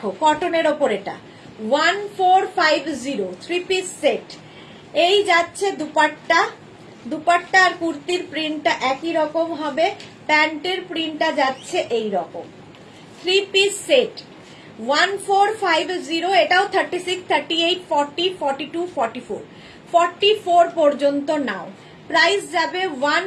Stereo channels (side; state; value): both; identical; correlation 1.00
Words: কটনের ওপর এটা 1450, 3 পিস সেট। এই যাচ্ছে দুপাট্টা, দুপাট্টা আর কুর্তির প্রিন্টটা একই রকম হবে। প্যান্টের প্রিন্টটা যাচ্ছে এই রকম। 3 পিস সেট 1450, এটাও 36, 38, 40, 42, 44, 44 পর্যন্ত নাও। প্রাইস যাবে